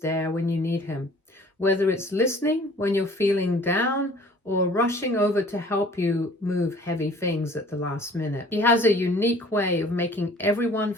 when you need him, whether it's listening when you're feeling down or rushing over to help you move heavy things at the last minute. He has a unique way of making everyone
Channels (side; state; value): both; normal; correlation 0.51